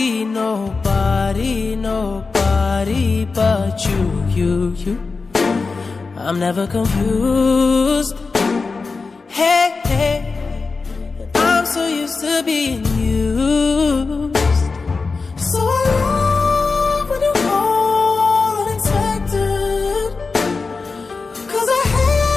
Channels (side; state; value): right; quieter; 4.3 dB